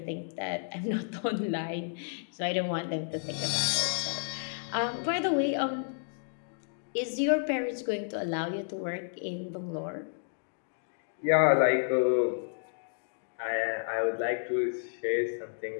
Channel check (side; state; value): right; silent; digital silence